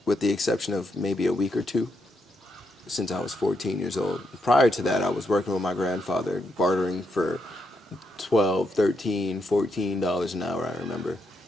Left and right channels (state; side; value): normal; both; correlation 0.80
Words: with the exception of maybe a week or two, since I was 14 years old. Prior to that, I was working with my grandfather, bartering for $12, $13, $14 an hour, I remember.